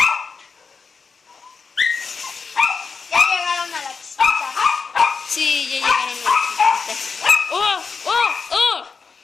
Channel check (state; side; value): quieter; right; 5.1 dB